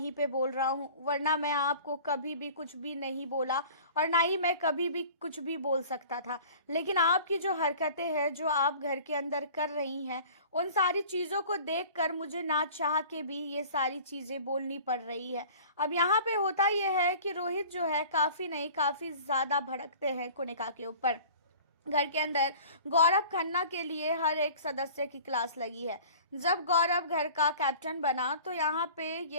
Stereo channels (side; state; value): both; inverted; correlation -0.45